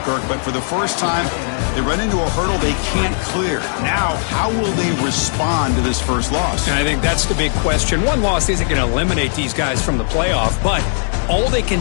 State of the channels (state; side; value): silent; right; digital silence